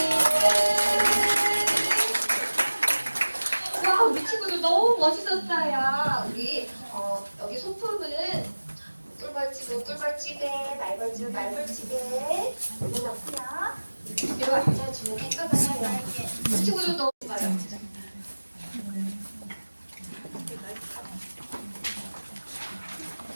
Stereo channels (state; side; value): inverted; both; correlation -1.00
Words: 와, 우리 친구들 너무 멋있었어요. 우리 여기 소품은 꿀벌집은 꿀벌집에, 말벌집은 말벌집에 올려놓고요. 뒤로 앉아주면 깨끗해요. 우리 친구들 너무 좋아요.